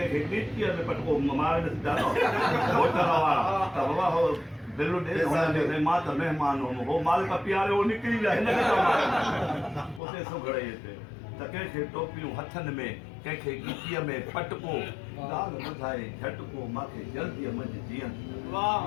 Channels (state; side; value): drops out; right; at 10.0 s